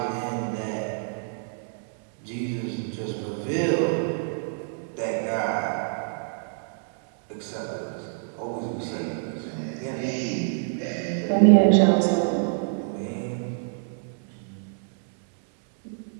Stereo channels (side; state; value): left; silent; 61 dB below the other